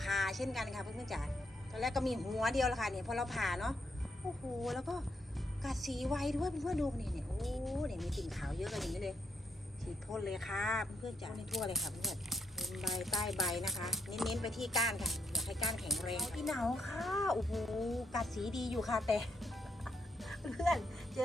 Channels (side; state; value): both; normal; correlation 0.78